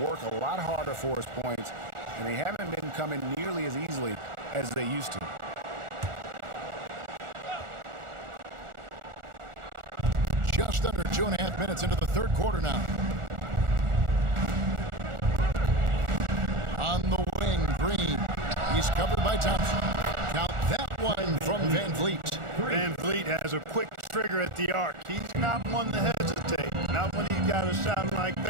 a lot harder for his points, and they haven't been coming nearly as easily as they used to. Just under 2.5 minutes into the third quarter now. On the wing, Green. He's covered by Thompson. Count that one from Van Vliet. Van Vliet has a quick trigger at the arc. He's not one to hesitate. Not when he's got a shot like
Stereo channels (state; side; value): late; left; 1.4 ms